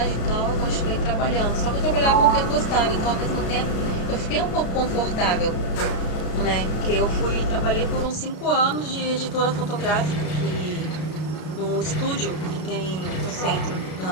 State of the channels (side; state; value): right; late; 33 ms